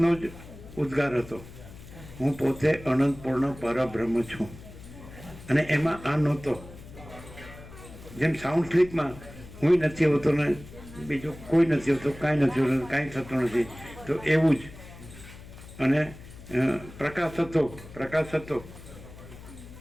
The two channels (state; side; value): noise; left; hum, 17 dB below the sound